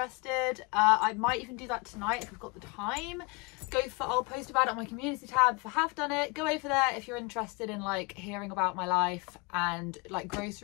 I might even do that tonight if I've got the time. I'll post about it on my community tab if I have done it. Go over there if you're interested in like hearing about my life and like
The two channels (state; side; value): quieter; right; 28.5 dB